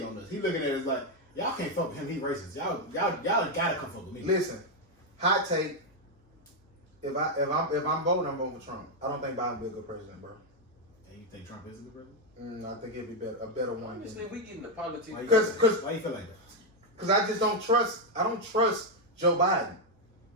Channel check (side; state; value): both; normal; correlation 0.03